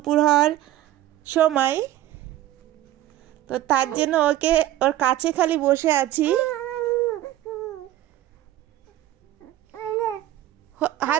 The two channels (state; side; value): quieter; left; 14.1 dB